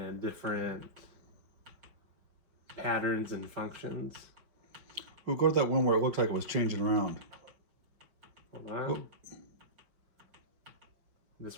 different patterns and functions. We'll go to that one where it looked like it was changing around. Hold on. Oh. This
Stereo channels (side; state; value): left; late; 5.5 ms